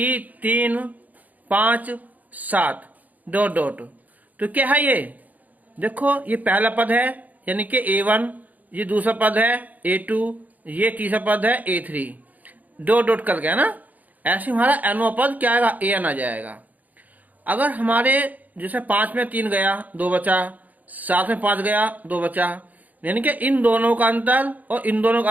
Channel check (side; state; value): left; late; 0.079 ms